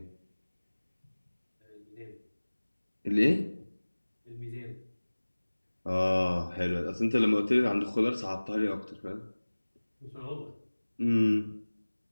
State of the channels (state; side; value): inverted; both; correlation -1.00